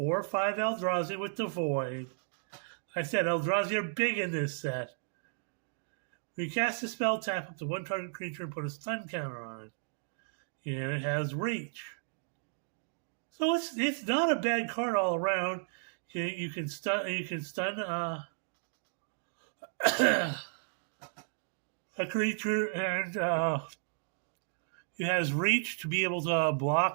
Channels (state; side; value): silent; left; digital silence